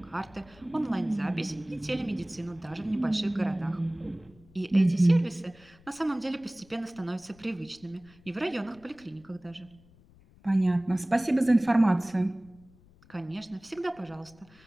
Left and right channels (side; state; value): left; noise; rumble, 27 dB below the sound